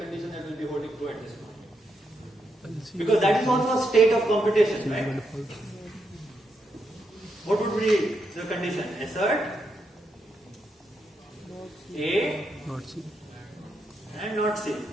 that will be holding true at this point? Because that is also a state of computation, right? What would be the condition? Assert A not C. And not C.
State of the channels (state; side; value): normal; both; correlation 0.81